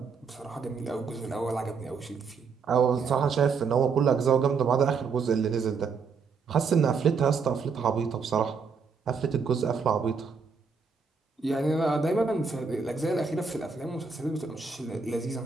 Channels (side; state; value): left; quieter; 5.3 dB